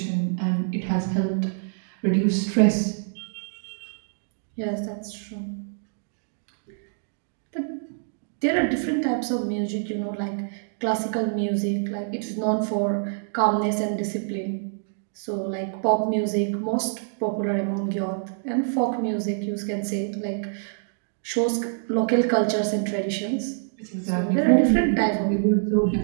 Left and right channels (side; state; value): left; silent; digital silence